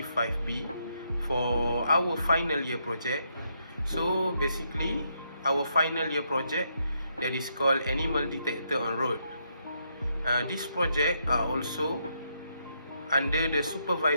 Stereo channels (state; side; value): inverted; both; correlation -0.76